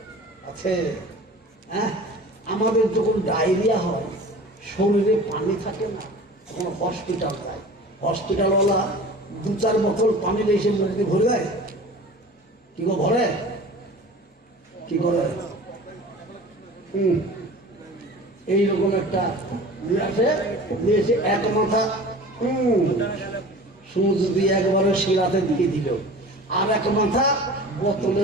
আছে। হ্যাঁ, আমাদের যখন ডায়রিয়া হয়, শরীরে পানি থাকে না, তখন হসপিটাল যায়। হসপিটালওয়ালা 2-4 বোতল পানি এসে মুখে ভরে দেয়। কি গো ভরে? কি করে? এইরকম একটা নিয়ে এসে এক মাথা সুচ দিয়ে একবারে শিরাতে দিয়ে দিল, আর এক মাথা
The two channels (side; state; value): both; normal; correlation 0.40